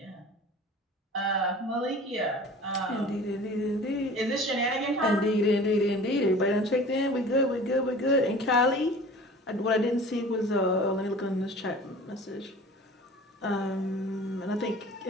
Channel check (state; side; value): normal; both; correlation 0.42